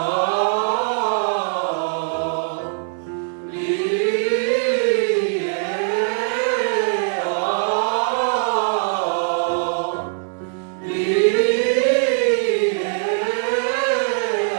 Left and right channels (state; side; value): silent; left; 65 dB below the other